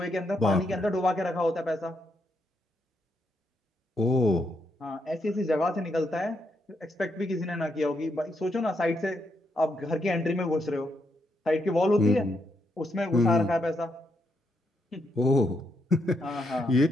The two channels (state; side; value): normal; both; correlation 0.79